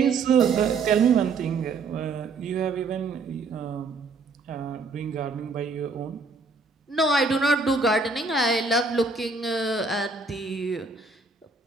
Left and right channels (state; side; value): quieter; left; 4.1 dB